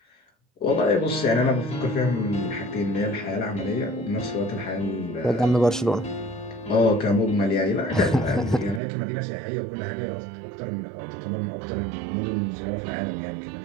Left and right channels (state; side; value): drops out; left; at 8.8 s